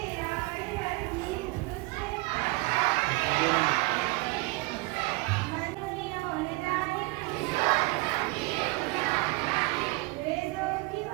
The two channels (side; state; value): left; quieter; 24.6 dB